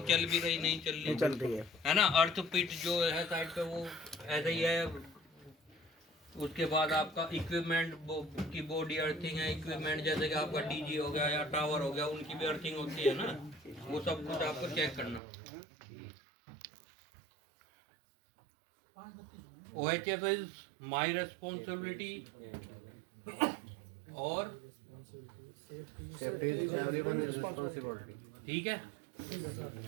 भी रही नहीं चल रही है ना। अर्थ पिट जो है साइड पे वो ऐसा ही है। उसके बाद आपका इक्विपमेंट की बॉडी अर्थिंग है, इक्विपमेंट जैसे कि आपका DG हो गया या टावर हो गया, उनकी भी अर्थिंग होती है ना, वो सब कुछ आपको चेक करना। OHF इज माई रेस्पॉन्सिबिलिटी और सेफ्टी इज एवरीवन रिस्पांसिबिलिटी। ठीक है,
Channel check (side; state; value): left; drops out; at 15.2 s